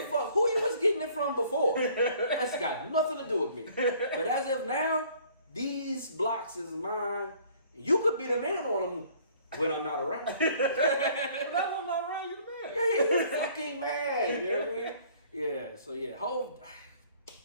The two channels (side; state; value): both; inverted; correlation -0.56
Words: fuck who you was getting it from before. That's got nothing to do with me. But as of now, these blocks is mine. You could be the man on them when I'm not around. But if I'm not around, you the man. Yeah, you fucking man. You know what I mean? Yeah. So yeah, Hove.